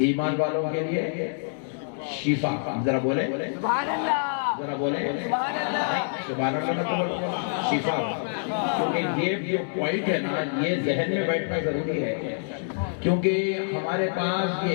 ایمان والوں کے لیے شفا، ذرا بولے سبحان اللہ، ذرا بولے سبحان اللہ، سبحان اللہ نہ بولو، شفا، کیونکہ یہ جو پوائنٹ ہے نا یہ ذہن میں بیٹھنا ضروری ہے، کیونکہ ہمارے پاس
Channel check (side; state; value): right; silent; digital silence